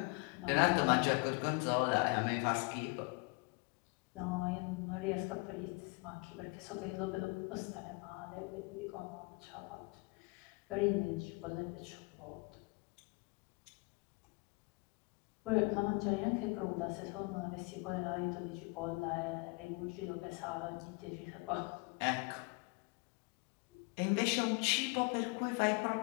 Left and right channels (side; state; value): right; quieter; 29.5 dB